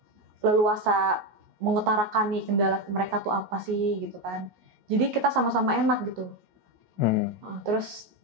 leluasa mengutarakan nih kendala mereka tuh apa sih gitu kan. Jadi kita sama-sama enak gitu. Terus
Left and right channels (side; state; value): left; late; 16 ms